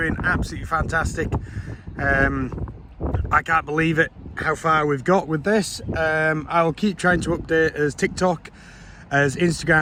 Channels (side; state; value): both; identical; correlation 1.00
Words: absolutely fantastic. I can't believe it how far we've got with this. I'll keep trying to update as TikTok, as